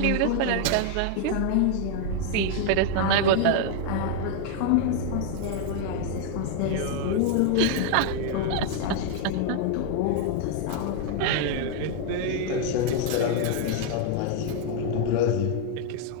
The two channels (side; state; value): both; different; correlation 0.00